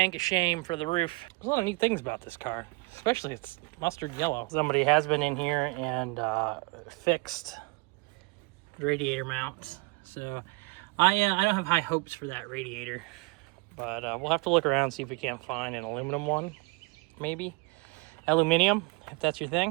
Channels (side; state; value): left; quieter; 27.2 dB